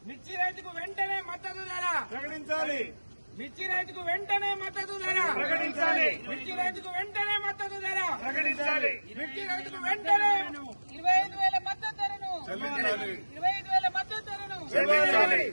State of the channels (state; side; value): inverted; both; correlation -1.00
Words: మిర్చి రైతుకు వెంటనే మద్దతు ధర, ప్రకటించాలి, మిర్చి రైతుకు వెంటనే మద్దతు ధర, ప్రకటించాలి, మిర్చి రైతుకు వెంటనే మద్దతు ధర, ప్రకటించాలి. మిర్చి రైతుకు వెంటనే 25,000 మద్దతు ధరను, చెల్లించాలి, 25,000 మద్దతు ధరను, చెల్లించాలి,